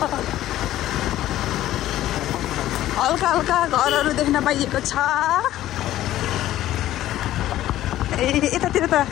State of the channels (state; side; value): quieter; right; 13.9 dB